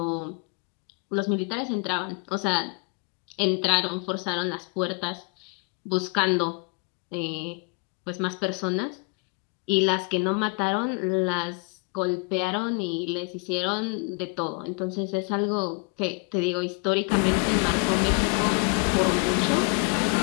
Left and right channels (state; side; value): quieter; right; 34.0 dB